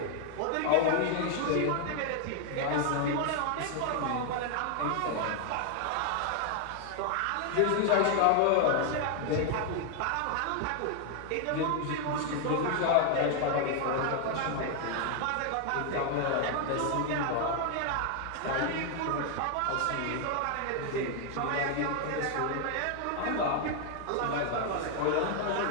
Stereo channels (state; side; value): different; both; correlation 0.00